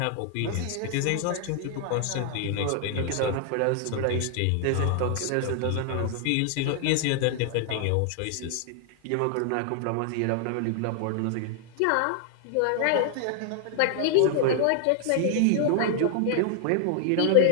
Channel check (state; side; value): different; both; correlation 0.00